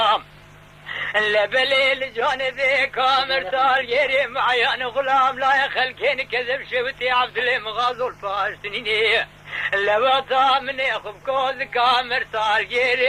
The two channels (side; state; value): both; identical; correlation 1.00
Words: لبليل جانبي كامر تال يري معيان غلام لا يخلكين كذب شوتي عبد الله مغازو الفاشتنيني لبطا من يخب كوز كامر تال